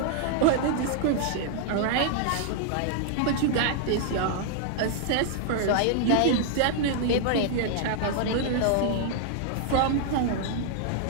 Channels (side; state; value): both; different; correlation -0.01